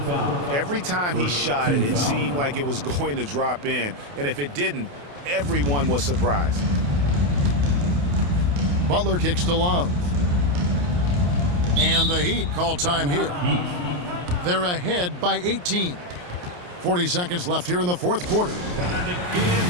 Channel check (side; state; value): left; late; 28 ms